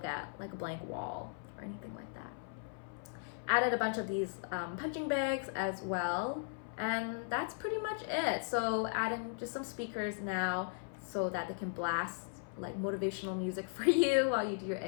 at like a blank wall or anything like that. Added a bunch of these punching bags as well, and that's pretty much it. So adding just some speakers now so that they can blast like motivational music for you while you do your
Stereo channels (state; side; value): silent; right; 53 dB below the other